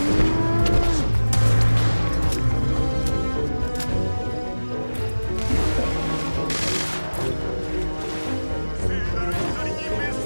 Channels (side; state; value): both; inverted; correlation -1.00